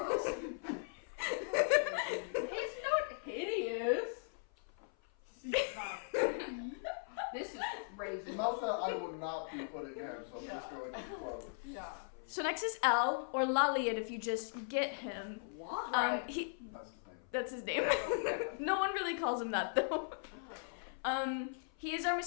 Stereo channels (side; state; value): right; silent; 52 dB below the other